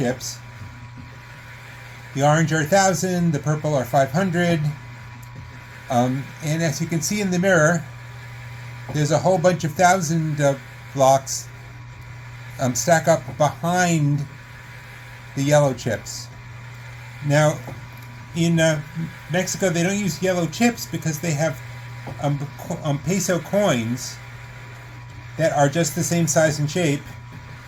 The orange are 1,000, the purple are 500, and as you can see in the mirror, there's a whole bunch of 1,000 blocks stack up behind the yellow chips. Now, in Mexico, they don't use yellow chips because they have peso coins that are just the same size and shape.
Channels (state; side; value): identical; both; correlation 1.00